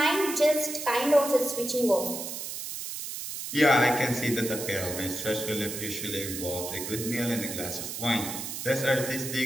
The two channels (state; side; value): noise; right; hiss, 6 dB below the sound